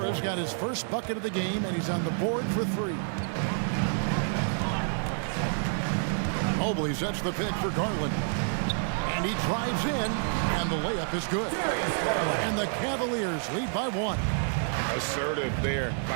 got his first bucket of the game, and he's on the board for 3. Mobley sets the pick for Garland. And he drives in, and the layup is good. And the Cavaliers lead by 1. Assertive there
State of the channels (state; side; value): silent; left; digital silence